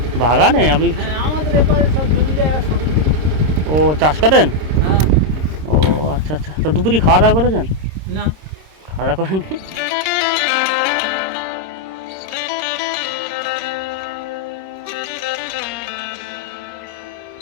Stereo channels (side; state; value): left; late; 26 ms